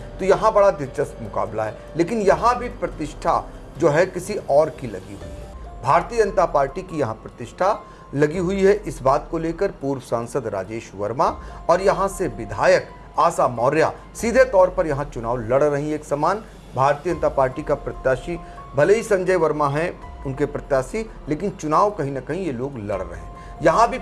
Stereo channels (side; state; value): both; identical; correlation 1.00